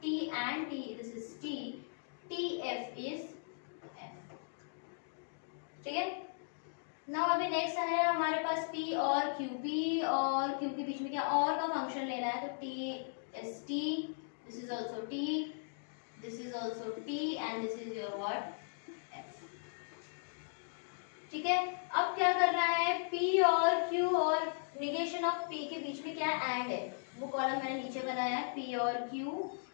T and T, this is T, T F is F, ठीक है। नाउ अभी नेक्स्ट है हमारे पास P और Q। P और Q के बीच में क्या और का फंक्शन लेना है, तो T is T, this is also T, this is also T and this is your what, F, ठीक है। अब क्या कर रहा है, P और Q और निगेशन ऑफ P के बीच में क्या एंड है, वो कॉलम मैंने नीचे बनाया है, P और Q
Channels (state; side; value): silent; right; digital silence